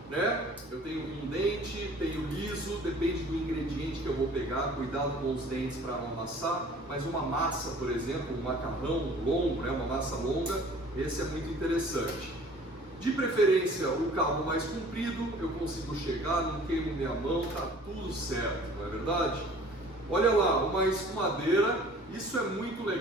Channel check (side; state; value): both; normal; correlation 0.50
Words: né? Eu tenho um dente, tenho liso, depende do ingrediente que eu vou pegar, cuidado com os dentes para não amassar, mas uma massa, por exemplo, um macarrão longo, né? Uma massa longa, esse é muito interessante. De preferência, o cabo mais comprido, eu consigo chegar, não queimo minha mão, tá tudo certo, não é verdade? Olha lá, uma escumadeira, isso é muito